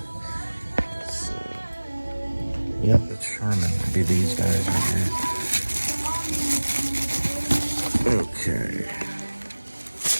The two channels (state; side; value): inverted; both; correlation -1.00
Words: Yep, that's Charmin. It'd be these guys right here. Okay.